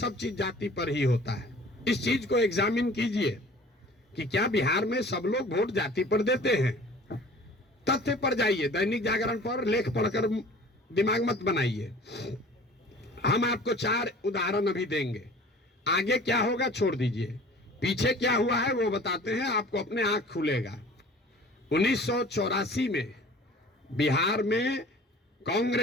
चीज जाति पर ही होता है। इस चीज को एग्जामिन कीजिए कि क्या बिहार में सब लोग वोट जाति पर देते हैं? तथ्य पर जाइए, दैनिक जागरण पर लेख पढ़कर दिमाग मत बनाइए। हम आपको 4 उदाहरण अभी देंगे। आगे क्या होगा छोड़ दीजिए, पीछे क्या हुआ है वो बताते हैं, आपको अपने आंख खुलेगा। 1984 में बिहार में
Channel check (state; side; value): normal; both; correlation 0.46